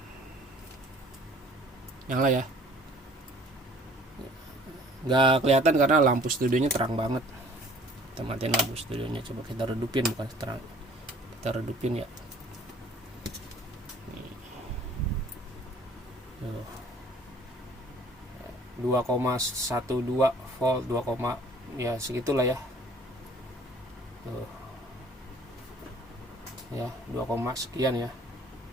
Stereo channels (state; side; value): normal; both; correlation 0.53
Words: Nyala ya, nggak kelihatan karena lampu studionya terang banget. Kita matiin lampu studionya, coba kita redupin, bukan terang, kita redupin ya. Nih. 2,12 volt, 2, ya segitulah ya. Tuh. Ya, 2, sekian ya.